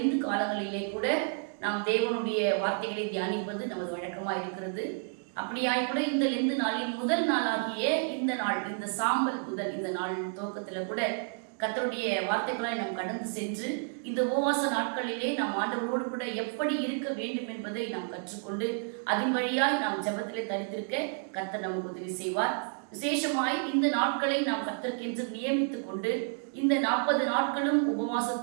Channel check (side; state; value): left; silent; 57 dB below the other